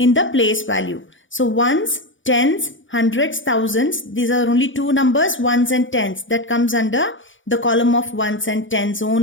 the place value. So ones, tens, hundreds, thousands, these are only 2 numbers, ones and tens. That comes under the column of ones and tens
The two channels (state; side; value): late; right; 0.56 ms